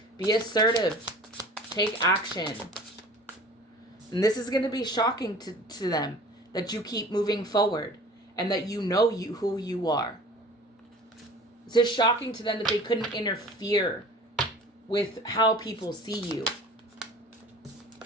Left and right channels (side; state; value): both; normal; correlation 0.44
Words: Be assertive. Take action. And this is going to be shocking to them that you keep moving forward and that you know who you are. This is shocking to them that they couldn't interfere with how people see you.